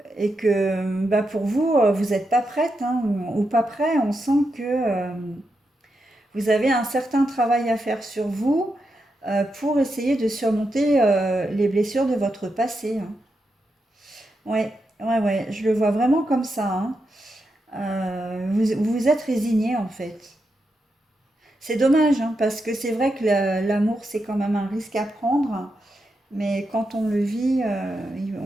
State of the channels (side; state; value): both; normal; correlation 0.85